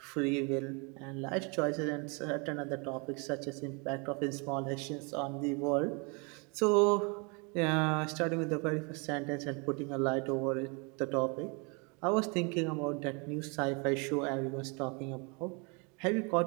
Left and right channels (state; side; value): quieter; left; 32.1 dB